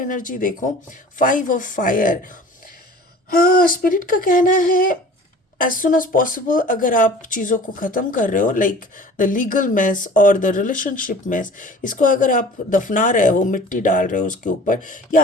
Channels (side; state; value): both; normal; correlation 0.44